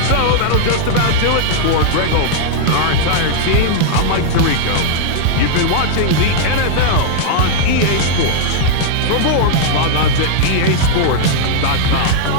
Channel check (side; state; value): both; different; correlation -0.01